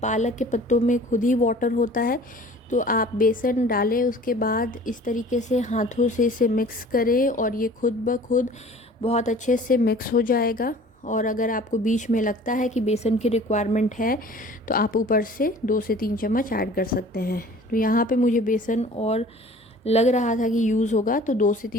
के पत्तों में खुद ही वाटर होता है। तो आप बेसन डालें, उसके बाद इस तरीके से हाथों से इसे मिक्स करें और ये खुद ब खुद बहुत अच्छे से मिक्स हो जाएगा। और अगर आपको बीच में लगता है कि बेसन की रिक्वायरमेंट है तो आप ऊपर से 2 से 3 चम्मच ऐड कर सकते हैं। तो यहाँ पे मुझे बेसन और लग रहा था कि यूज़ होगा तो 2 से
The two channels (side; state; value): both; normal; correlation 0.47